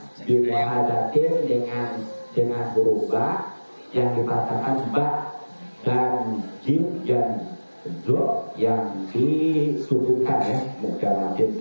dimuhadatin dengan huruf ba yang dikatakan ba dan jim dan zo yang disubuhkan ya, muka wajib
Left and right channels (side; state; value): both; inverted; correlation -1.00